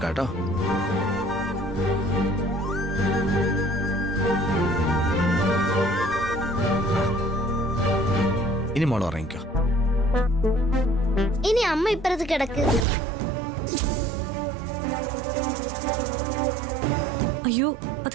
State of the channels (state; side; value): drops out; left; at 12.9 s